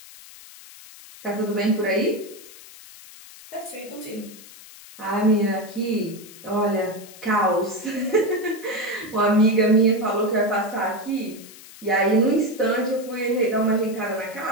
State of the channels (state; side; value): noise; left; hiss, 19 dB below the sound